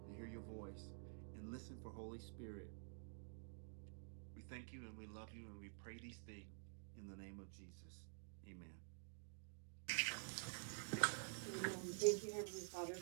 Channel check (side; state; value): left; silent; digital silence